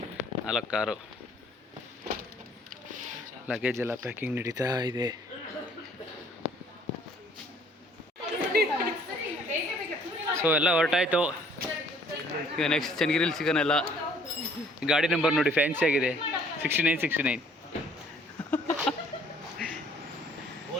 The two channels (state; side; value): normal; both; correlation 0.59